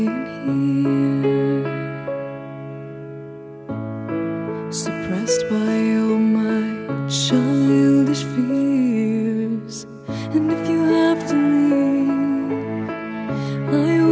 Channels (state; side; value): identical; both; correlation 1.00